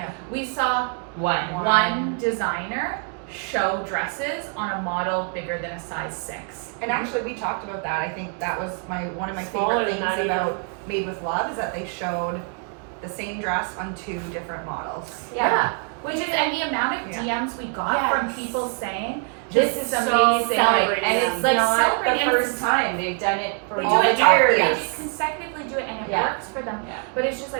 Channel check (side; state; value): left; quieter; 39.5 dB